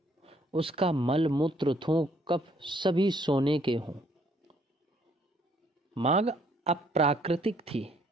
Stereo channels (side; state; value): both; normal; correlation 0.66